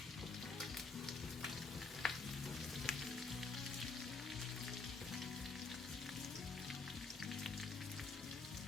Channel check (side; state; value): right; quieter; 4.3 dB